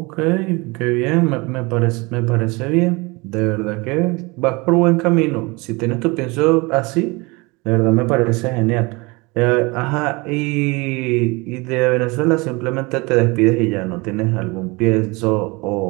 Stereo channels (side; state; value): left; quieter; 25.7 dB